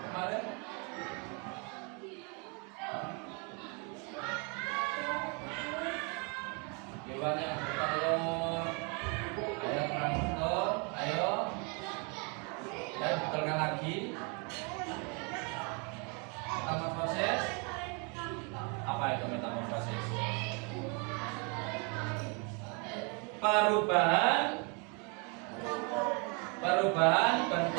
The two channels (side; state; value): left; quieter; 34.1 dB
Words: Hewan yang bertelur. Ayo kurang betul. Ayo. Ya, betulkan lagi. Metamorfosis. Apa itu metamorfosis? Perubahan